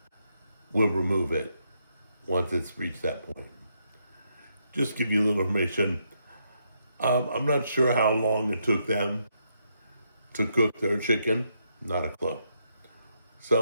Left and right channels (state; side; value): inverted; both; correlation -0.78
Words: we'll remove it once it's reached that point. Just give you a little information. I'm not sure how long it took them to cook their chicken. Not a clue.